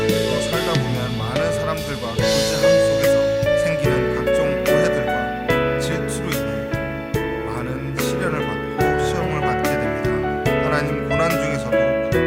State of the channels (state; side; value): identical; both; correlation 1.00